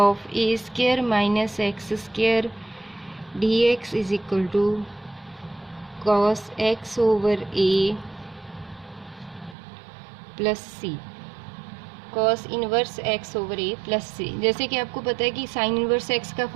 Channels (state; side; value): drops out; left; at 9.6 s